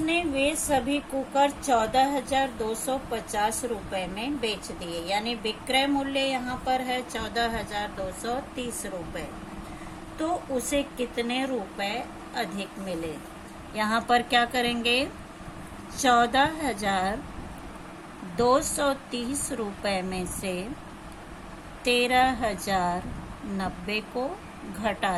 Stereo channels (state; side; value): identical; both; correlation 1.00